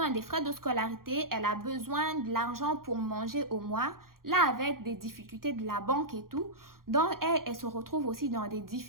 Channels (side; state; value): left; late; 0.92 ms